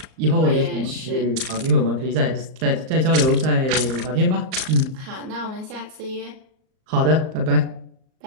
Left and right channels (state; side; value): late; left; 38 ms